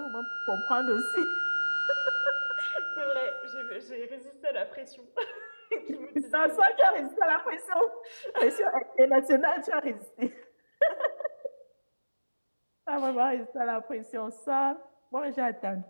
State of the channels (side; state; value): both; inverted; correlation -1.00